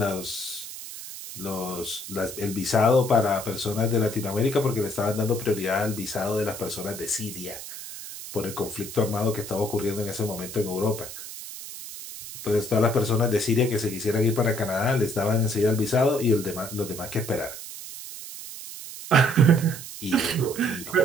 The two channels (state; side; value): noise; right; hiss, 11 dB below the sound